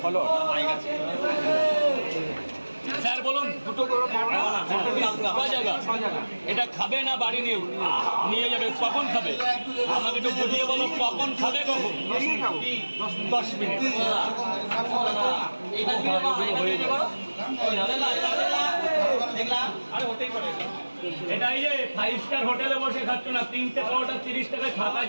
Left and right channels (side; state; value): both; inverted; correlation -1.00